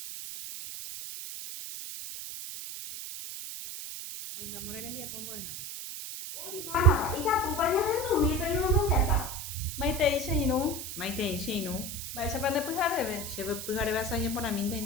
Oĩmbámo rembiapo mbo'ehára. Oĩmbámapa ikatúpa ñahendúmipe ñomongetã. Maitei che irũ. Maitei che irũ. Mba'éichapa ndepyhareve. Chepyhareve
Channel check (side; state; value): right; noise; hiss, 8 dB below the sound